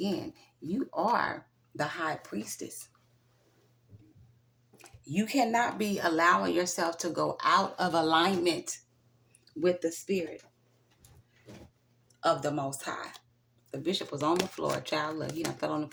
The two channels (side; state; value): both; identical; correlation 1.00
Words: you are the High Priestess. You cannot be allowing yourself to go out of alignment with the spirit of the Most High. The bishop was on the floor. Child, look, he done fell on the